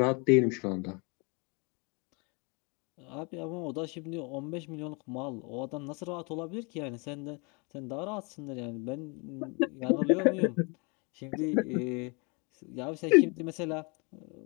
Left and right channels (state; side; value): quieter; right; 32.0 dB